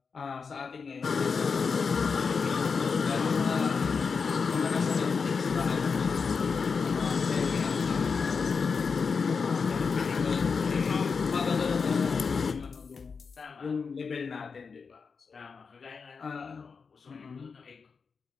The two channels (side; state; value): right; quieter; 5.3 dB